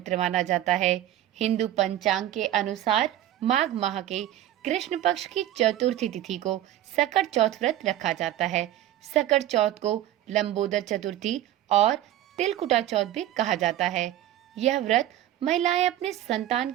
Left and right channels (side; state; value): left; quieter; 13.1 dB